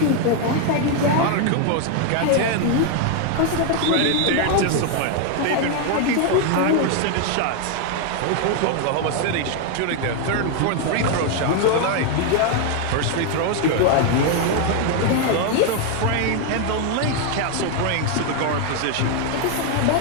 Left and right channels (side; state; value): both; different; correlation 0.01